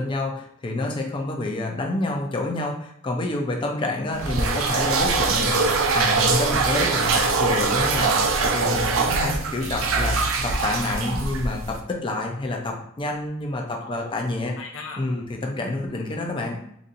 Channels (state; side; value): normal; both; correlation 0.25